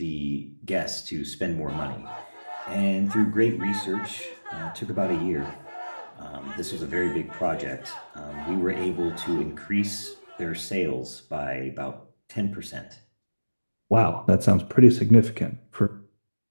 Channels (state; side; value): inverted; both; correlation -1.00